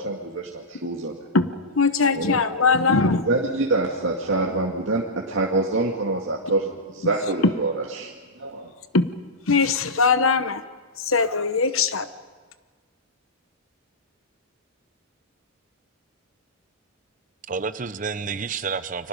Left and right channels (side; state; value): both; normal; correlation -0.10